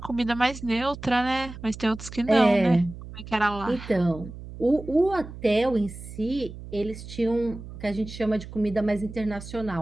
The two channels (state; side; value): noise; right; hum, 13 dB below the sound